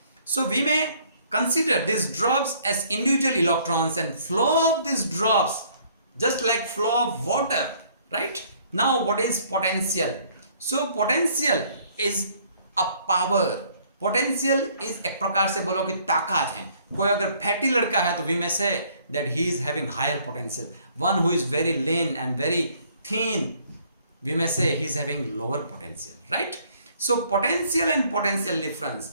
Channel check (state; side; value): inverted; both; correlation -0.61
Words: So we may consider these drops as individual electrons and flow of these drops just like flow of water, right? Now what is potential? So potential is a power. Potential is एक प्रकार से बोलो कि ताकत है. कोई अगर fatty लड़का है तो we may say that he is having higher potential. One who is very lean and very thin, we may say he is having lower potential, right? So potential and potential